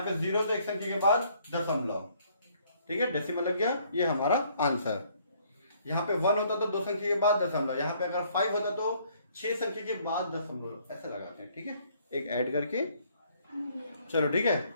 पे 0 तो एक संख्या के बाद दशमलव, ठीक है, डेसिमल लग गया, ये हमारा आंसर। यहाँ पे 1 होता तो 2 संख्या के बाद दशमलव, यहाँ पे अगर 5 होता तो 6 संख्या के बाद दशमलव, ऐसे लगाते हैं, ठीक है, एक ऐड करके। चलो ठीक है,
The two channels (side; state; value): both; inverted; correlation -0.64